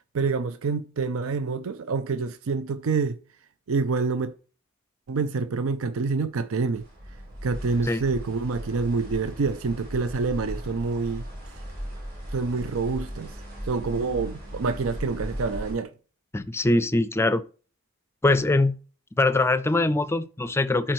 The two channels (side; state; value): both; normal; correlation 0.45